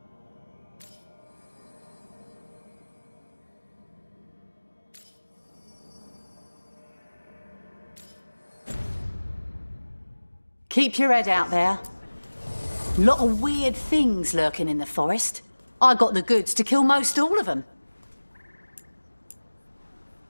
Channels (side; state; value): both; inverted; correlation -1.00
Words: Keep your head out there. Lot of weird things lurking in the forest. I got the goods to kill most all of them.